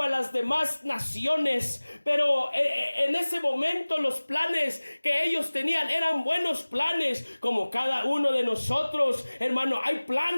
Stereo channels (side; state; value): both; inverted; correlation -1.00